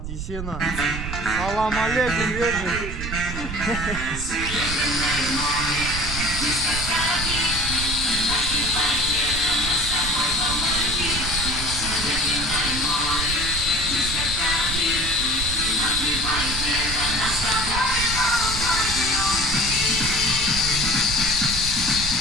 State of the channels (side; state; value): right; noise; rumble, 6 dB below the sound